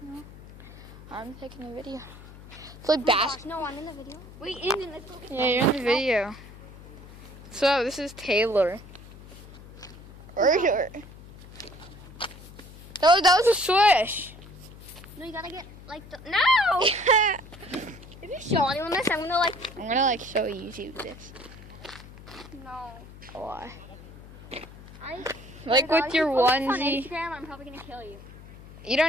that? I'm taking a video. It's like basketball. No, I'm in the video. Wait, in this. Yeah, you're in the video. So this is Taylor. That was a swish. No, you gotta get like the. No! If you show anyone this, I'm gonna like. I'm gonna like show YouTube this. No. Why? I Like with your If you post this on onesie. Instagram, I'm probably gonna kill you. You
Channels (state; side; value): noise; left; hum, 18 dB below the sound